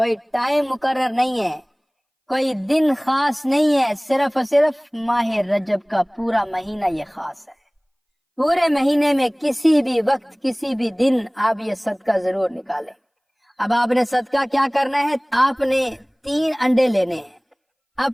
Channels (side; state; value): both; identical; correlation 1.00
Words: ٹائم مقرر نہیں ہے، کوئی دن خاص نہیں ہے، صرف اور صرف ماہ رجب کا پورا مہینہ یہ خاص ہے۔ پورے مہینے میں کسی بھی وقت کسی بھی دن آپ یہ صدقہ ضرور نکالیں۔ اب آپ نے صدقہ کیا کرنا ہے؟ آپ نے 3 انڈے لینے ہیں،